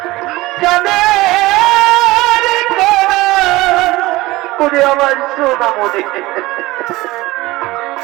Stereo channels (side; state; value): left; quieter; 19.5 dB